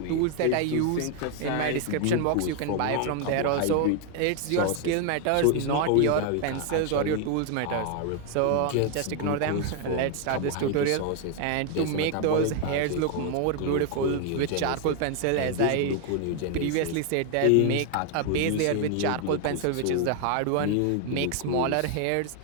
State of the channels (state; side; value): different; both; correlation 0.00